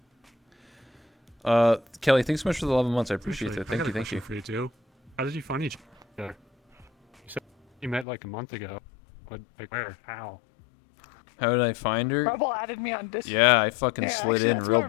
Kelly, thanks so much for the 11 months. I appreciate Actually, it. Thank I got you, a thank question you. for you too. How did you find each other? You said you met like a month ago. But like where? How? How did I find her? Rebel added me on Discord. Yeah, I fucking Yeah, slid actually, in that's real more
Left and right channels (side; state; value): right; drops out; at 8.1 s